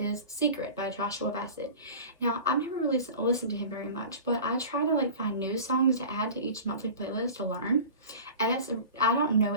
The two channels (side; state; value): both; inverted; correlation -0.37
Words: Secret by Joshua Bassett. Now, I've never really listened to him very much, but I try to like find new songs to add to each monthly playlist to learn. And I don't know